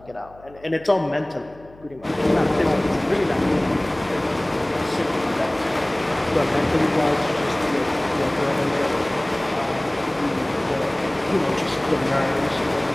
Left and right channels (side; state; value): left; noise; hum, 24 dB below the sound